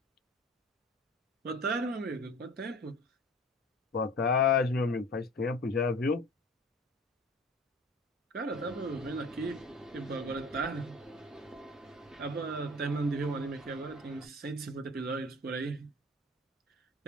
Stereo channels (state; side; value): normal; both; correlation 0.42